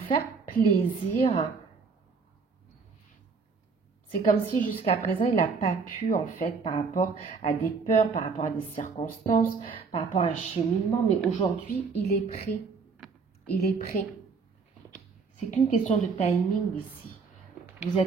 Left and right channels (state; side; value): quieter; left; 5.0 dB